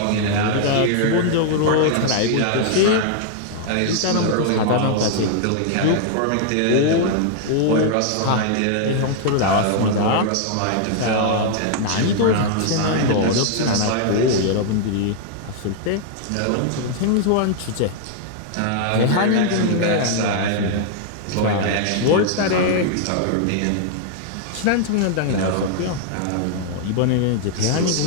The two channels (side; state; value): both; different; correlation -0.01